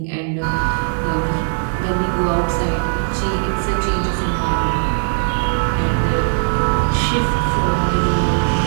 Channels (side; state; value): left; silent; 67 dB below the other